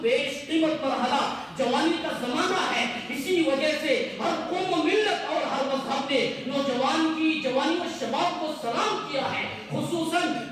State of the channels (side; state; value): both; identical; correlation 1.00